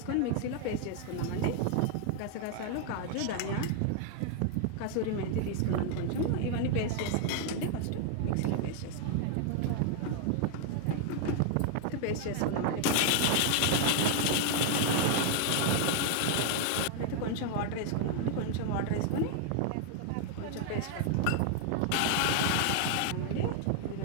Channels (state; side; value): different; both; correlation 0.00